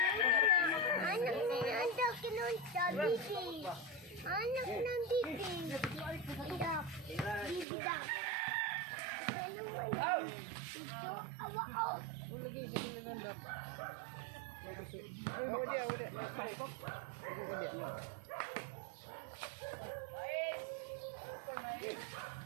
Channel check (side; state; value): left; drops out; at 7.7 s